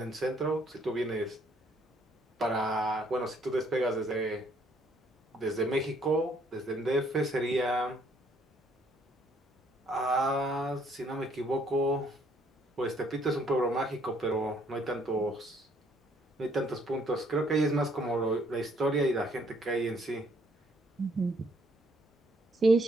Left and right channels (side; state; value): both; normal; correlation 0.66